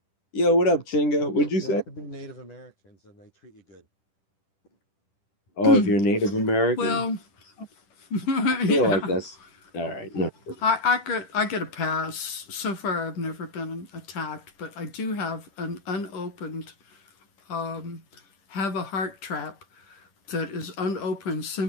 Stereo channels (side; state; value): right; late; 10 ms